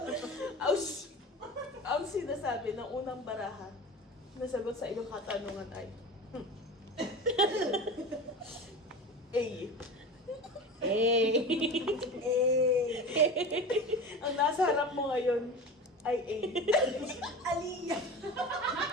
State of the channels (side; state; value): both; normal; correlation 0.31